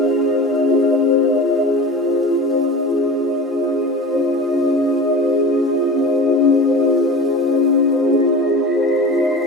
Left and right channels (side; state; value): both; normal; correlation 0.34